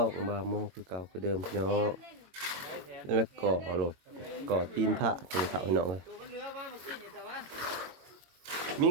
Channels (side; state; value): left; late; 22 ms